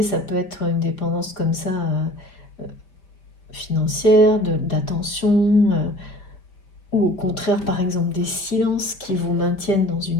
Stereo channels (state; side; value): late; right; 5.0 ms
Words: ça peut être une dépendance comme ça, financière, d'attention, ou au contraire, par exemple, des silences qui vous maintiennent dans